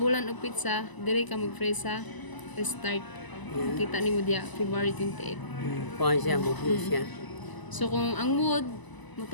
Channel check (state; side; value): late; right; 1.0 ms